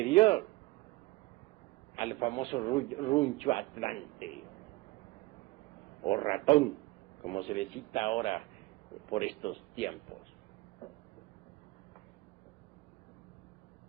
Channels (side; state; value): left; quieter; 20.8 dB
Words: al famoso runcho atlante, o ratón, como se le cita ahora por estos tiempos.